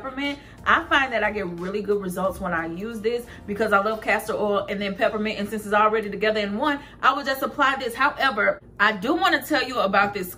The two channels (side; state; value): both; identical; correlation 1.00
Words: I find that I get really good results when I use this because I love castor oil and then peppermint, and since it's already together in one, I would just apply this. However, I do want to tell you about this